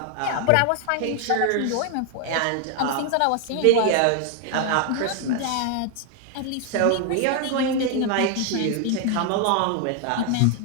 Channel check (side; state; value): both; different; correlation 0.00